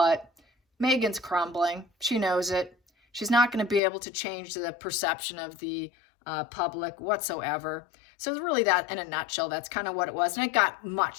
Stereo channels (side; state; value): right; drops out; at 3.8 s